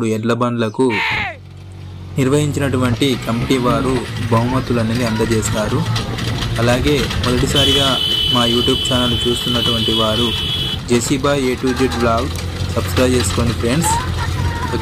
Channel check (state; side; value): identical; both; correlation 1.00